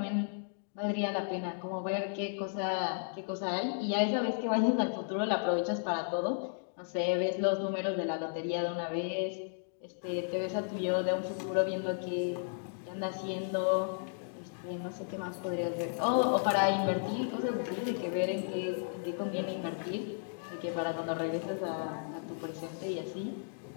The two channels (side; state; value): right; silent; digital silence